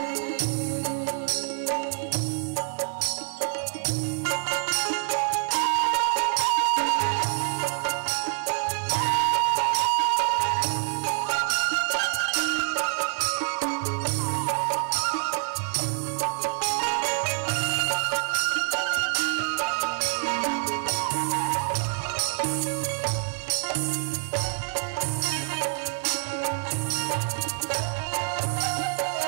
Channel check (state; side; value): silent; left; 61 dB below the other